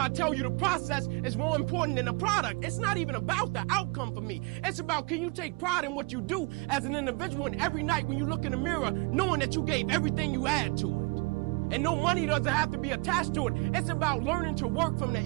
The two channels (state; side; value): quieter; left; 28.8 dB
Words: I tell you the process is more important than the product. It's not even about the outcome for me. It's about, can you take pride in what you do as an individual, and every night when you look in the mirror, knowing that you gave everything you had to it. And no money doesn't have to be attached to it. It's about learning to work from the